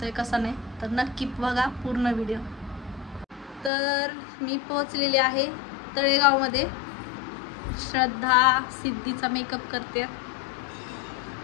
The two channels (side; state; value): right; drops out; at 3.7 s